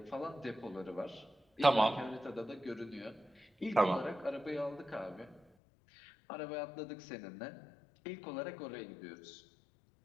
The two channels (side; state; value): right; drops out; at 5.4 s